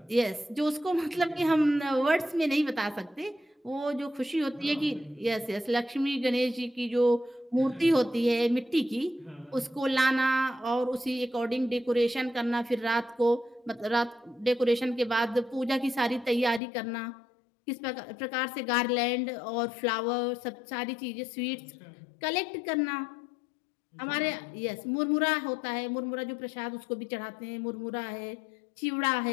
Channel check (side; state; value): right; drops out; at 16.6 s